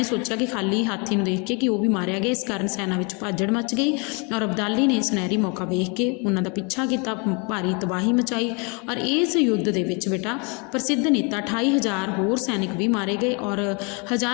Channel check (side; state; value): right; quieter; 32.8 dB